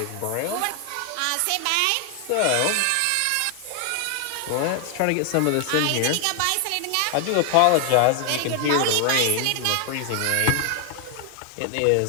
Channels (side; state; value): both; different; correlation 0.00